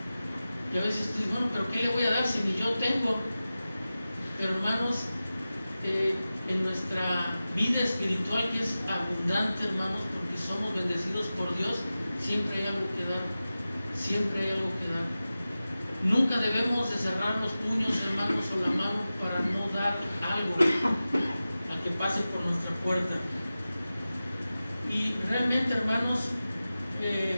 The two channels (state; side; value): inverted; both; correlation -0.95